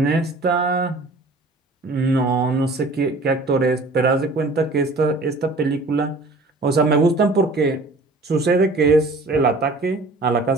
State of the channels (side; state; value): left; quieter; 3.0 dB